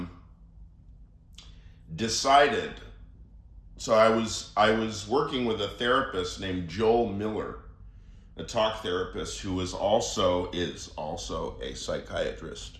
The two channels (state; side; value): identical; both; correlation 1.00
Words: decided. So I was working with a therapist named Joel Miller, a talk therapist who is also a psychiatrist.